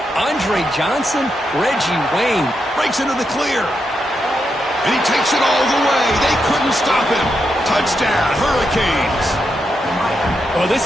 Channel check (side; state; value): both; normal; correlation 0.84